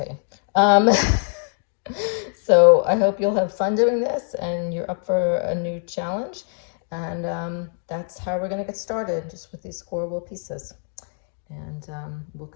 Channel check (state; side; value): silent; right; 58 dB below the other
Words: So I hope you'll have fun doing this and you're up for a new challenge. And that's how we're going to get started, just with these scoreable pieces. And we'll